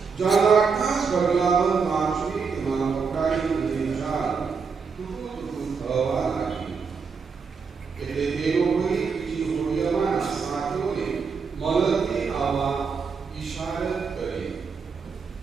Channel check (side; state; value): left; quieter; 5.4 dB